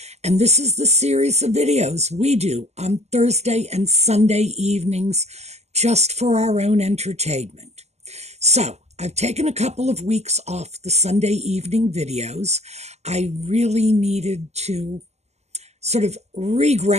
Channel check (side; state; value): left; late; 0.32 ms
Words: And this is the series of videos we do on Thursday and Sunday evenings just for our own entertainment. So I've taken a couple of weeks off the Sunday evening videos. I really needed to sort of